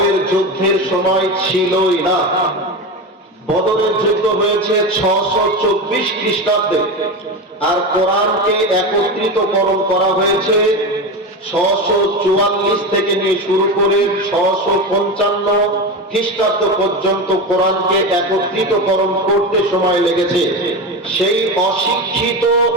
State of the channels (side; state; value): both; normal; correlation 0.22